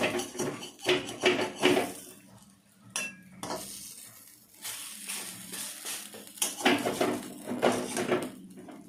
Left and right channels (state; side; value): identical; both; correlation 1.00